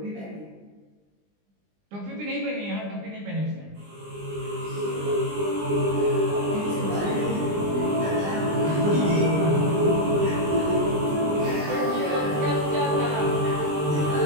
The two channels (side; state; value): left; late; 20 ms